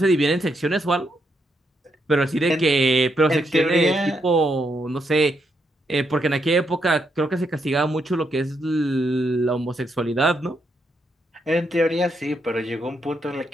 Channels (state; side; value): normal; both; correlation 0.79